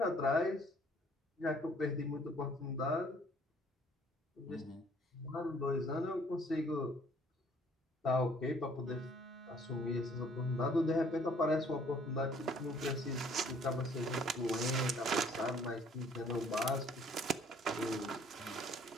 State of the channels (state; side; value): normal; both; correlation 0.59